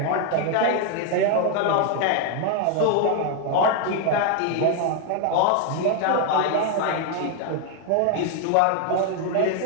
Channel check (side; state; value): both; different; correlation 0.00